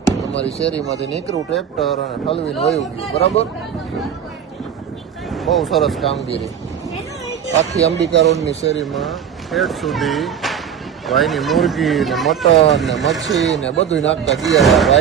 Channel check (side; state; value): left; quieter; 8.1 dB